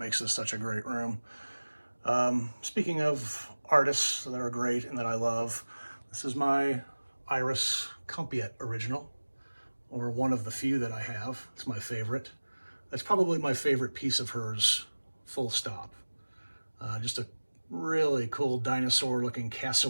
this such a great room. Speaking of artists that are great and that I love, this is my Iris Compiet original, or one of the few that I have. It's my favorite. That's probably my favorite piece of hers, full stop. Just a really cool dinosaur-looking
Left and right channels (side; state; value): both; inverted; correlation -1.00